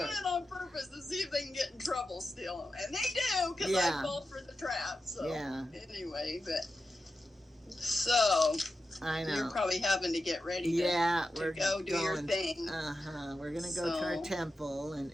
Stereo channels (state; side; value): normal; both; correlation 0.91